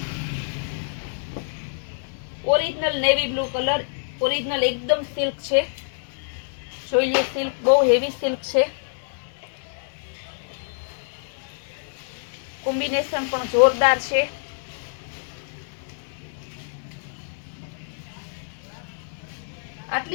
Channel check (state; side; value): silent; right; 61 dB below the other